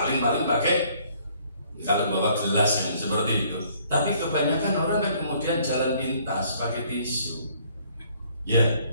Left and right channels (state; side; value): inverted; both; correlation -0.62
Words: pakai kalau bawa gelas yang seperti itu. Tapi kebanyakan orang kan kemudian jalan pintas pakai tisu. Ya.